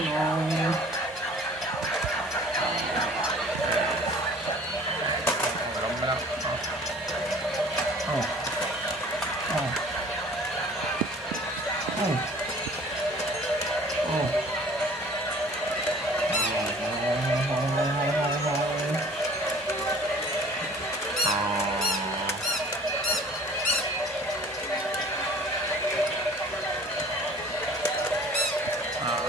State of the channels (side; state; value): both; normal; correlation 0.49